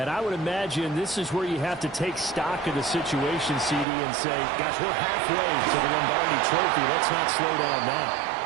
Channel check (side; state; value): left; drops out; at 3.9 s